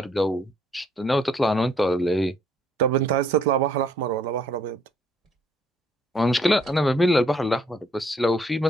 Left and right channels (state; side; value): normal; both; correlation 0.66